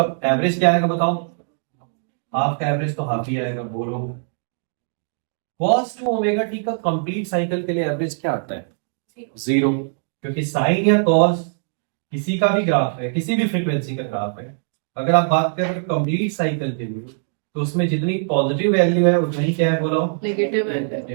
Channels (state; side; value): silent; left; digital silence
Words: एवरेज क्या आएगा बताओ? हाफ का एवरेज तो हाफ ही आएगा। बोलो, cos 2 ओमेगा टी का कंप्लीट साइकिल के लिए एवरेज क्या आता है? 0। क्योंकि साइन या cos किसी का भी ग्राफ है, किसी भी फ्रीक्वेंसी का ग्राफ है, अगर आप बात करें कंप्लीट साइकिल के लिए, तो उसमें जितनी पॉजिटिव वैल्यू है उतना ही क्या है बोलो, नेगेटिव